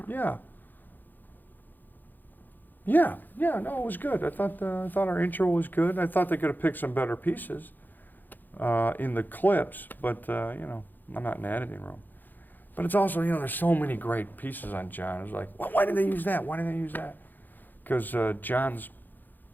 Yeah. Yeah, no, it was good. I thought our intro was good. I thought they could have picked some better pieces in the clips, but you know, I'm not in the editing room. But it's also, you know, there's so many great pieces on John. It's like, well, why did they use that? Why did they use that? Because John's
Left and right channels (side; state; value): right; late; 0.087 ms